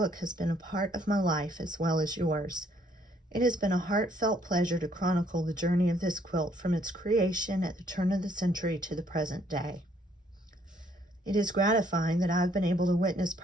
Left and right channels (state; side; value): normal; both; correlation 0.66